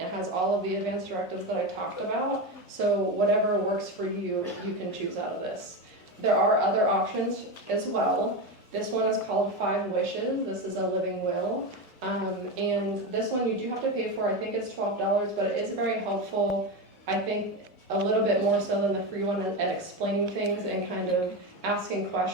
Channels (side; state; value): both; normal; correlation 0.17